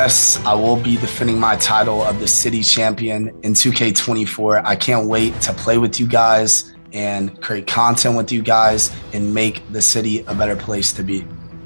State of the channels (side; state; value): both; inverted; correlation -1.00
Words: I will be defending my title of the city champion in 2K24. I can't wait to play with you guys and create content with you guys and make the city a better place to be.